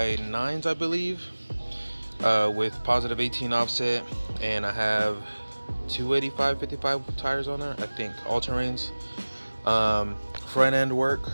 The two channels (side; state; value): both; inverted; correlation -1.00